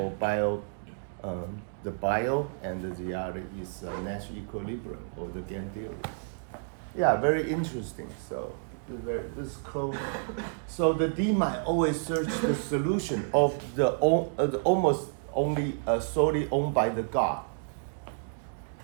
the bio, and the other is Nash equilibrium or the game theory. Yeah, very interesting. So this is called. So the deep mind always search the solution of the almost only solely owned by the God.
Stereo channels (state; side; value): silent; left; digital silence